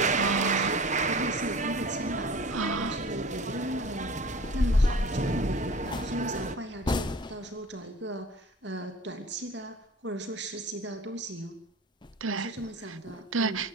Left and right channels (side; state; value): both; normal; correlation 0.40